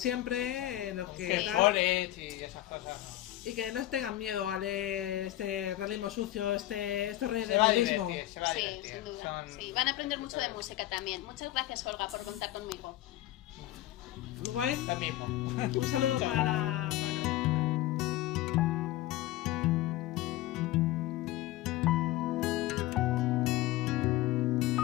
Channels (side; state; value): right; quieter; 15.3 dB